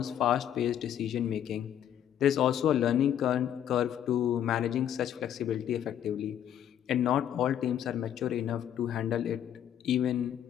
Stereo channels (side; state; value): right; quieter; 10.2 dB